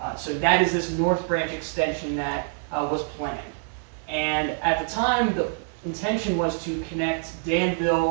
So that is this North Branch extension that was planned. And at the time, the intention was to connect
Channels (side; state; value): left; silent; 61 dB below the other